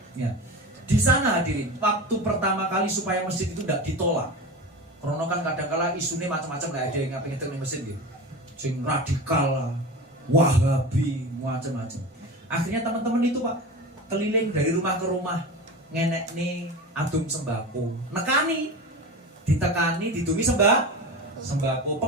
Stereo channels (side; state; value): both; normal; correlation 0.29